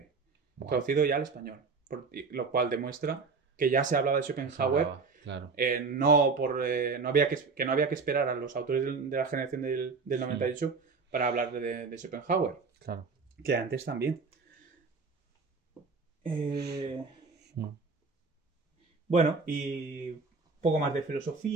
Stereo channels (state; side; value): quieter; left; 4.6 dB